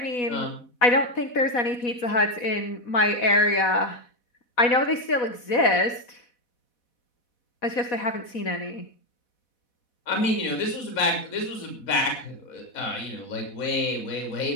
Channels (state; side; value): late; right; 4.1 ms